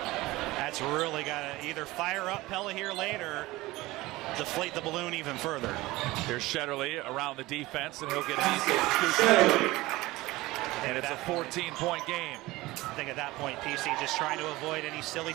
really got to either fire up Pella here late or deflate the balloon even further. Here's Shetterly around the defense, and he'll get an easy scoop. And it's a 14-point game. I think at that point, PC just trying to avoid any silly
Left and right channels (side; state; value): left; quieter; 19.4 dB